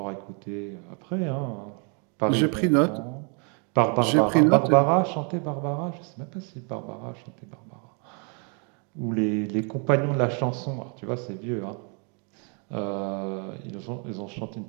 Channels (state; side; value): quieter; left; 37.2 dB